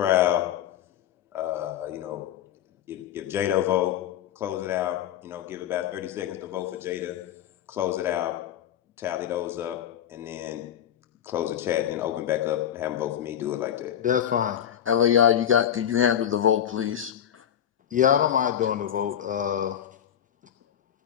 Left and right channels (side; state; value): right; quieter; 10.1 dB